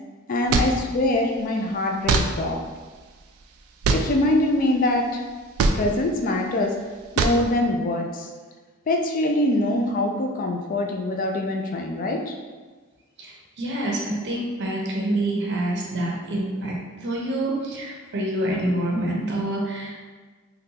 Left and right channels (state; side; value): normal; both; correlation 0.43